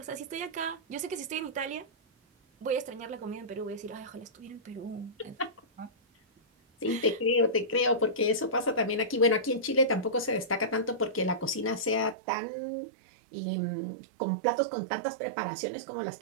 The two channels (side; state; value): left; drops out; at 12.2 s